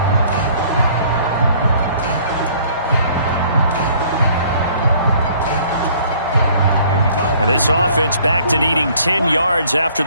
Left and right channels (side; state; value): both; inverted; correlation -0.57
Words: And this offense back to needing 10 yards after